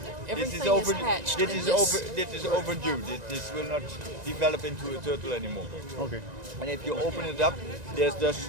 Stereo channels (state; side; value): late; left; 1.9 ms